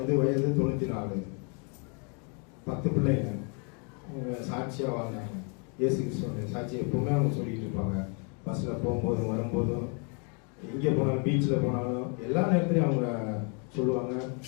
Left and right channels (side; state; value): right; quieter; 37.5 dB